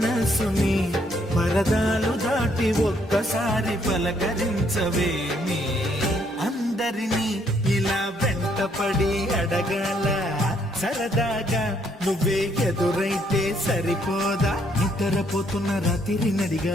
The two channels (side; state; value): both; normal; correlation 0.69